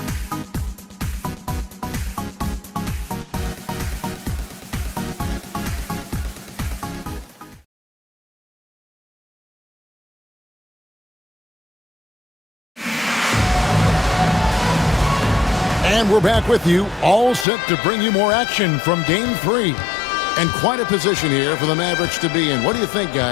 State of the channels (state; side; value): drops out; right; at 17.4 s